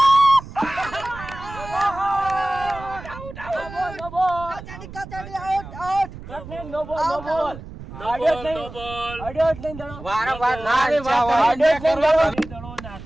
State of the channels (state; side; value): noise; right; rumble, 14 dB below the sound